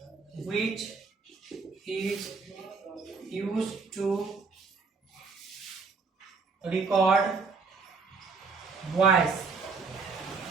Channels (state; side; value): quieter; left; 4.7 dB